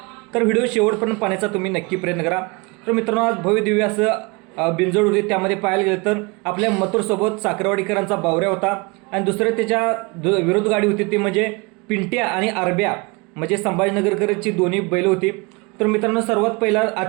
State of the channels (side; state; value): left; quieter; 27.6 dB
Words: तर व्हिडिओ शेवटपर्यंत पाहण्याचा तुम्ही नक्की प्रयत्न करा। तर मित्रांनो, आज भव्य दिव्य असं बिंजोड होते, त्यामध्ये पाहायला गेलं तर आपल्या मथुरसोबत साखरवाडीकरांचा बावऱ्या होता आणि दुसरं त्याच्या विरोध गाडी होती ती म्हणजे पिंट्या आणि आरब्या, म्हणजे संभाजीनगरकरची दोन्ही बैल होती। तर मित्रांनो, सर्वात पहिला